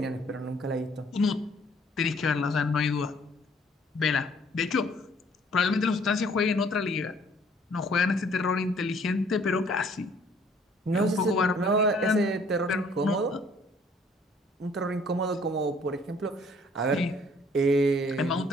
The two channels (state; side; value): normal; both; correlation 0.60